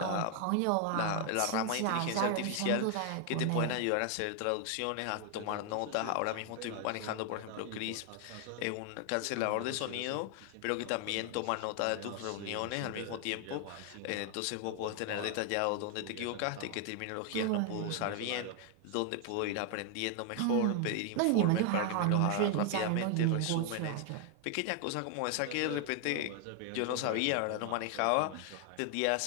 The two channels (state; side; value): different; both; correlation 0.00